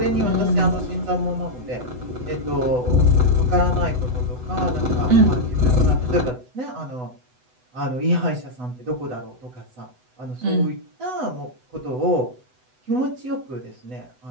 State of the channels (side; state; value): left; late; 8.0 ms